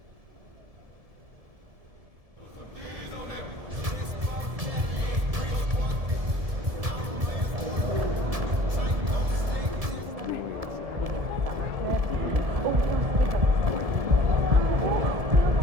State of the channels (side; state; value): left; late; 1.7 ms